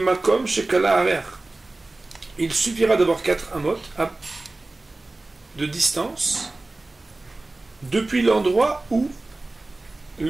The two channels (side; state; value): left; quieter; 3.0 dB